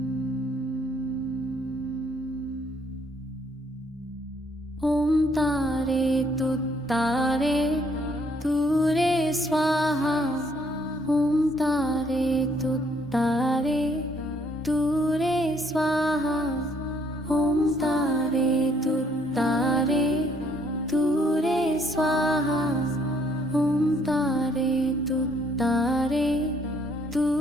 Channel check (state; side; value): normal; both; correlation 0.66